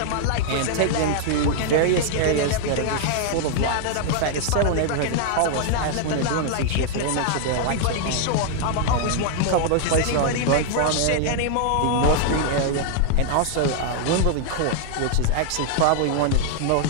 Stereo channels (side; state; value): both; different; correlation 0.00